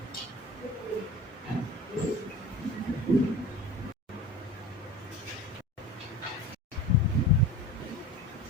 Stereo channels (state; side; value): normal; both; correlation 0.34